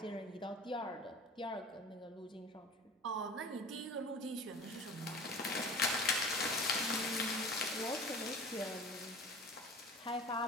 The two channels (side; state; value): both; normal; correlation 0.40